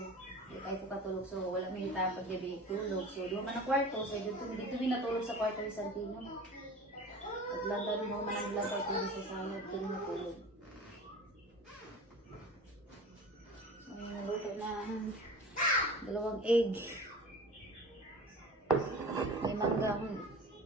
Hindi kayo po katulog so wala minitapad gabi tulog. So doon man ang kwarto, so dito min natulog sa kwarto ni Santino. At landa rin mo man ang landa ko sa salad, doon natulog. So naluto na dalawang egg. May mangga.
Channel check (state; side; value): normal; both; correlation 0.38